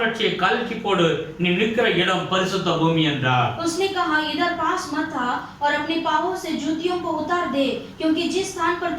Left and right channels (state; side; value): identical; both; correlation 1.00